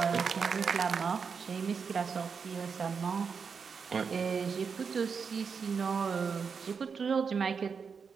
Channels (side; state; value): left; quieter; 5.8 dB